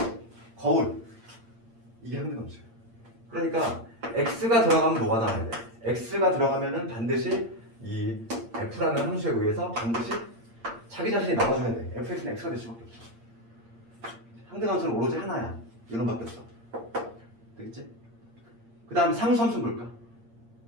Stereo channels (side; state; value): left; late; 8.7 ms